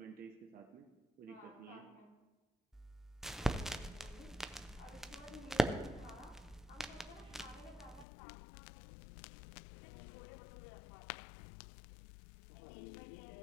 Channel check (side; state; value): right; drops out; at 8.1 s